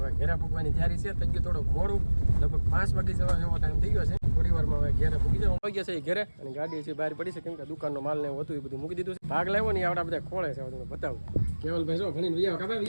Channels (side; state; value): both; inverted; correlation -1.00